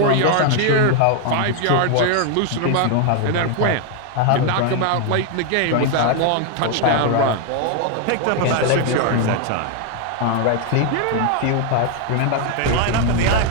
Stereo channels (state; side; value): different; both; correlation 0.01